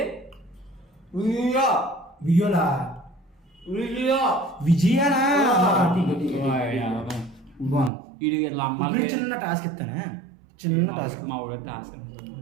వియోలా విజయనా? ఇడు వీళ్ళ అమ్మాయి చిన్న టాస్క్ ఇస్తానా? చిన్న టాస్క్. మా ఊళ్ళో టాస్క్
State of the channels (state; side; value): drops out; left; at 7.9 s